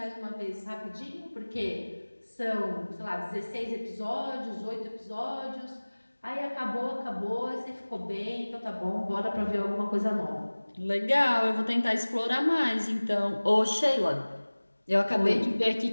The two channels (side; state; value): both; inverted; correlation -1.00